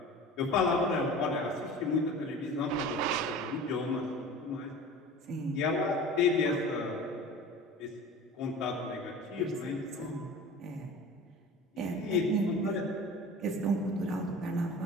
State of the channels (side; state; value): both; normal; correlation 0.38